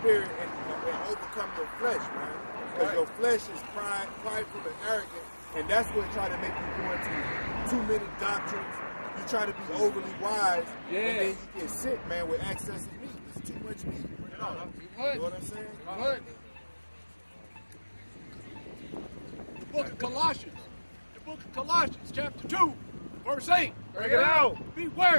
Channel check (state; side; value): inverted; both; correlation -1.00